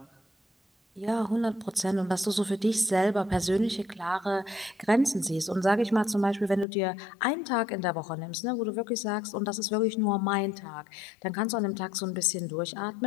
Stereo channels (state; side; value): drops out; right; at 6.7 s